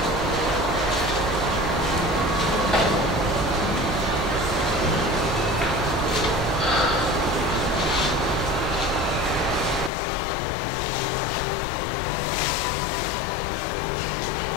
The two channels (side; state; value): right; drops out; at 9.9 s